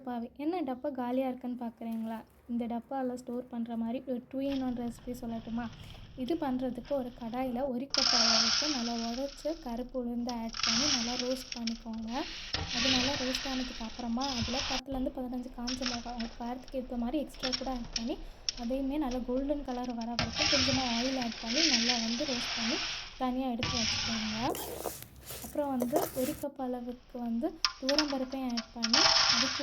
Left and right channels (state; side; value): identical; both; correlation 1.00